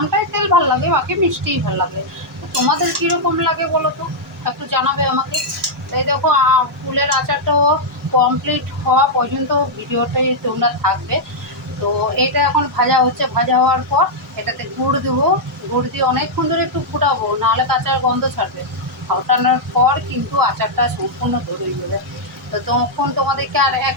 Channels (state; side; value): normal; both; correlation -0.05